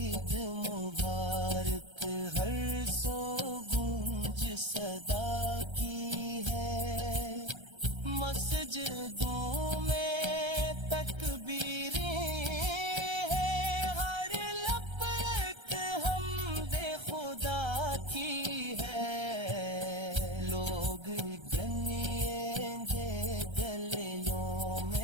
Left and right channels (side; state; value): left; late; 1.3 ms